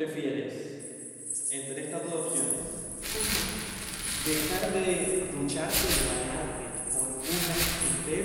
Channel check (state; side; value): identical; both; correlation 1.00